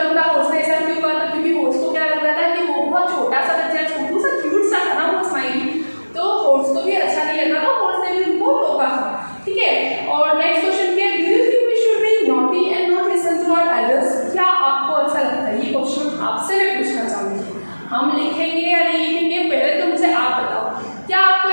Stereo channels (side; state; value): both; inverted; correlation -1.00